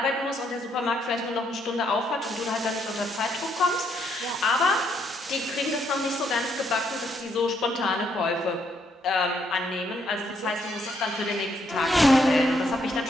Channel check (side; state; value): both; normal; correlation 0.73